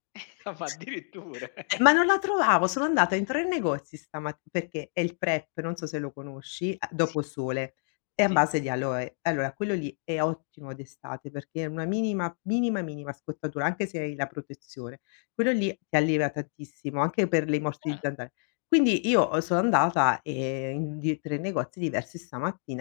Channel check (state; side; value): silent; right; 59 dB below the other